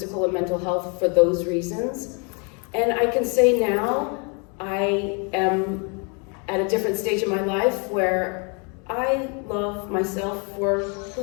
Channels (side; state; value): right; quieter; 35.7 dB